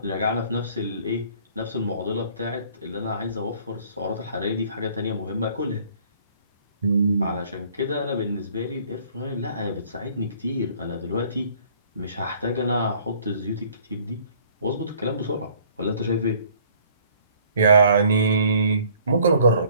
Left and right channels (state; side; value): inverted; both; correlation -0.57